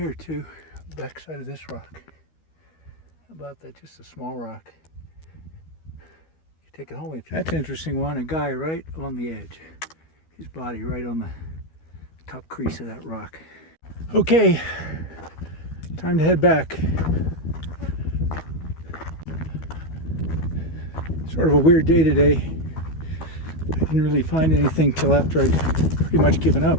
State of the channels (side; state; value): right; late; 12 ms